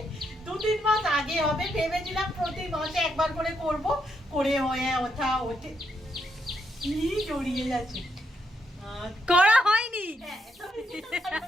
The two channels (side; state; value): both; normal; correlation 0.78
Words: 2-3 মাস আগে হবে। ভেবেছিলাম প্রতি মাসে একবার করে করব, করে হয়ে ওঠে কি জড়িয়ে যাচ্ছে। করা হয়নি। হ্যাঁ,